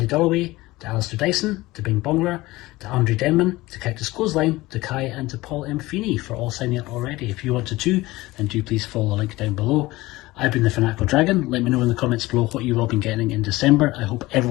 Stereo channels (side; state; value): right; quieter; 19.4 dB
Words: Dalloway, to Alistair Dyson, to Bing Bongler, to Andre Denman, to Cactus Clothesline, to Kai, and to Paul M. Feeney for all signing up already. If you want to too, then do please follow the link down below. I've been the Fanatical Dragon. Let me know in the comments below what you've all been getting in December. I hope